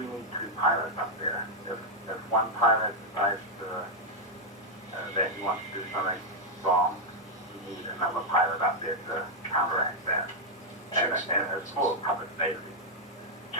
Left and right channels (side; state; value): both; normal; correlation -0.02